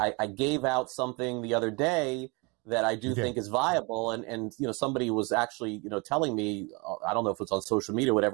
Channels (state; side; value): quieter; left; 29.1 dB